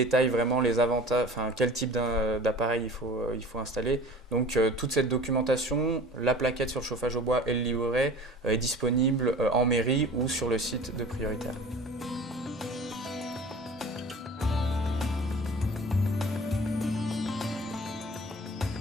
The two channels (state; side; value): normal; both; correlation 0.42